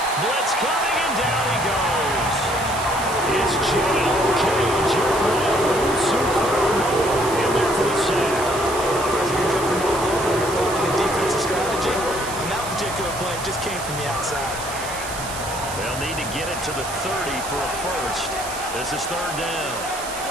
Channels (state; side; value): noise; right; hiss, 10 dB below the sound